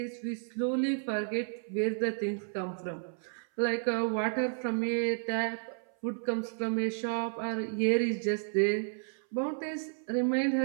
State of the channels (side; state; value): left; silent; 56 dB below the other